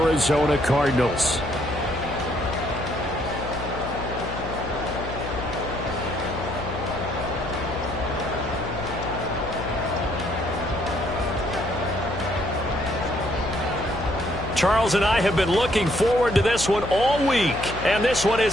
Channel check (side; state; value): left; noise; hum, 9 dB below the sound